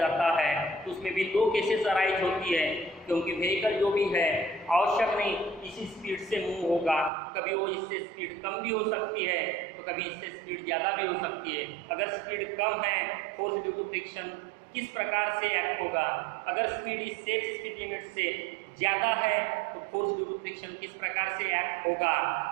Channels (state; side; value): drops out; left; at 7.1 s